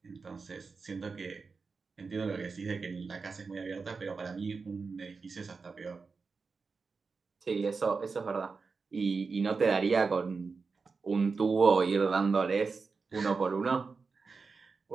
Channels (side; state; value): left; quieter; 4.7 dB